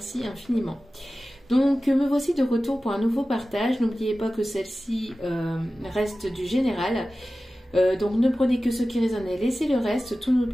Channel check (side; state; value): both; normal; correlation 0.95